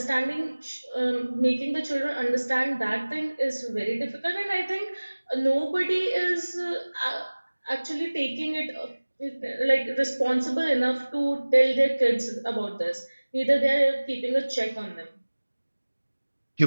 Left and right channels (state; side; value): inverted; both; correlation -1.00